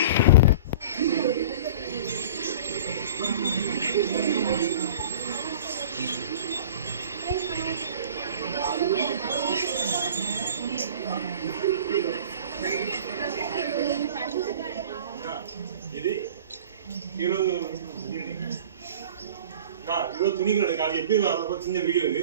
இது 20 துணிகள் எடுக்காது. எப்படி வரப்போ சின்ன வீடியோ இது,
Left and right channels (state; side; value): inverted; both; correlation -0.41